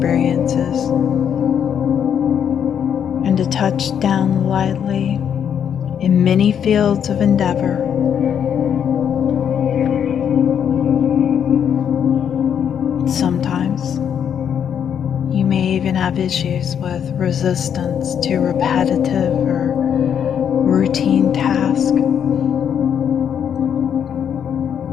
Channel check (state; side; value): quieter; right; 8.4 dB